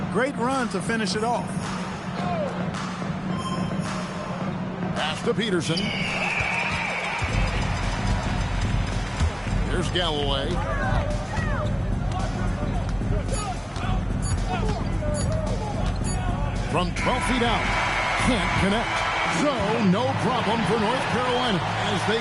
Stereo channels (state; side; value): identical; both; correlation 1.00